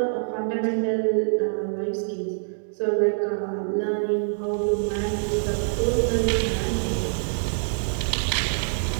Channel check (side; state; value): left; silent; digital silence